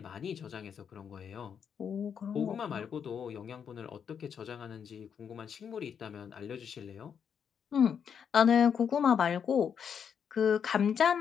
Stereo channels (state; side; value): quieter; right; 7.5 dB